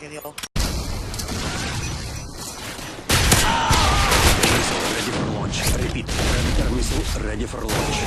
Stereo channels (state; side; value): identical; both; correlation 1.00